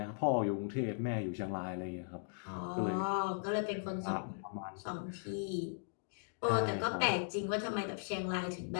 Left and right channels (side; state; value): right; silent; digital silence